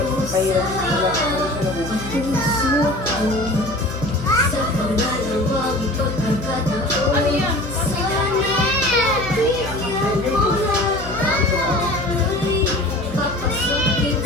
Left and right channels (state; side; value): noise; left; hum, 11 dB below the sound